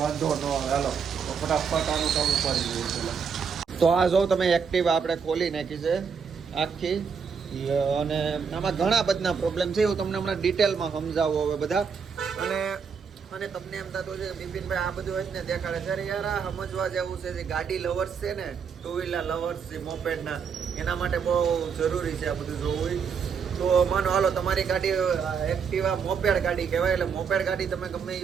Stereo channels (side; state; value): left; quieter; 6.3 dB